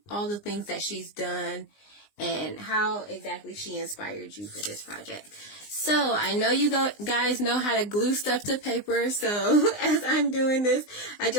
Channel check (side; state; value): right; late; 19 ms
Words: all the things that she's done and how exactly she inspired you for this project. So I know you guys know how to glue stuff to paper. So as I'm doing this, I